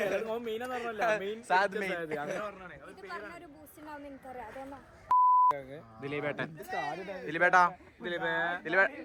ഇത് പറഞ്ഞൊരു ബൂസ്റ്റ് ഉണ്ടാവും എനിക്കറിയാം അതൊന്നും ദിലീപേട്ട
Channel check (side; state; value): both; identical; correlation 1.00